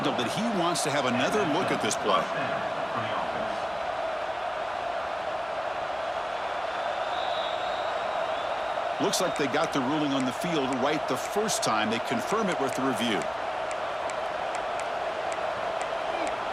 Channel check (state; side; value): identical; both; correlation 1.00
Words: that he wants to have another look at this play. Looks like they got the ruling on the field right the first time. They confirm it with the review.